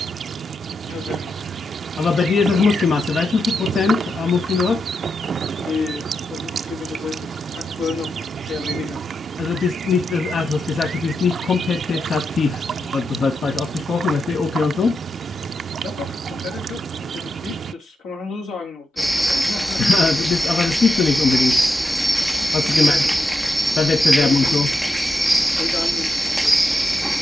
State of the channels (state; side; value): normal; both; correlation 0.86